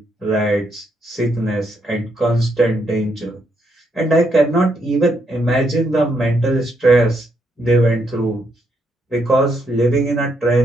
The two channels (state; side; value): normal; both; correlation 0.76